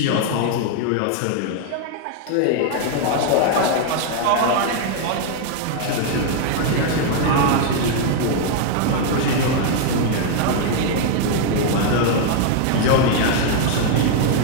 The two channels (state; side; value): different; both; correlation 0.00